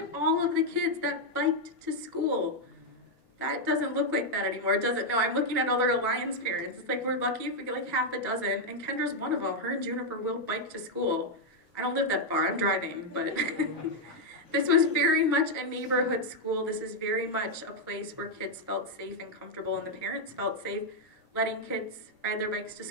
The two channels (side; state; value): both; normal; correlation 0.00